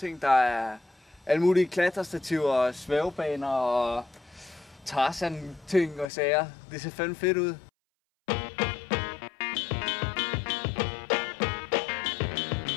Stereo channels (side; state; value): right; drops out; at 6.1 s